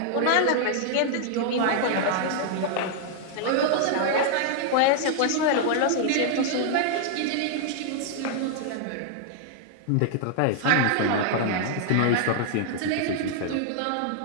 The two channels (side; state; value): both; different; correlation -0.01